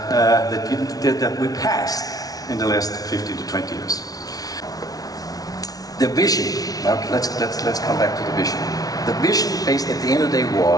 we passed in the last 15 to 20 years. The vision, now let's come back to the vision. The vision, based at the end of the day,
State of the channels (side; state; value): right; late; 0.18 ms